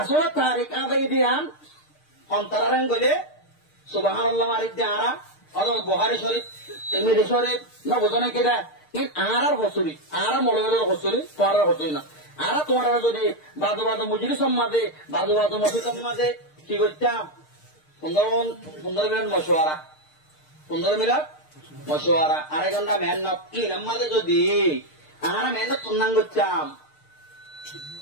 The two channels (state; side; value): late; right; 6.6 ms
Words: তারিখ আদায় দিয়ান অন্তরাং গলে সুবাহান আল্লাহ মারিক দাঁড়া অথবা বুহারি শরীফ তিরমিজি শরীফ নবজন নাকি দেয় আর হসুরি আর মৌলবের হসুরি তোমার হসুরি না আর তোমার যদি বাজু বাজু মুজরি সম্মাদে বাজু বাজু মসি সম্মাদে কি করতাম 15 মিনিট মশওয়ারা 15 মিনিট মশওয়ারা আড়াই ঘন্টা মেহনত কি নাম্মাদে যদি আর মেহনত তুন্নাং করতাম